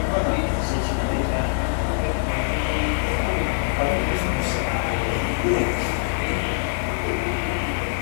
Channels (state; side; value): silent; right; 63 dB below the other